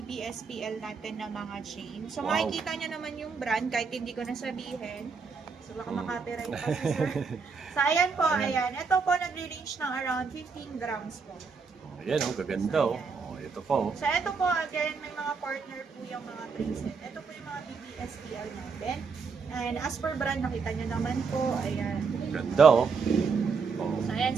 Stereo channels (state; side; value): quieter; left; 5.2 dB